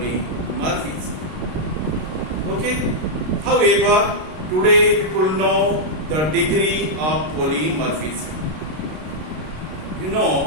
Okay? However, today people know the degree of polymorphism. You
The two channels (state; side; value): late; left; 33 ms